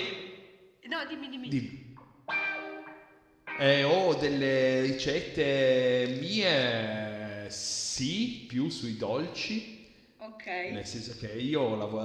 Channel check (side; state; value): both; identical; correlation 1.00